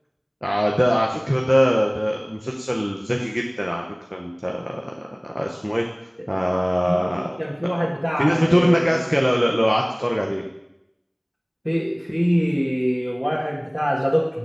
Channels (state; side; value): identical; both; correlation 1.00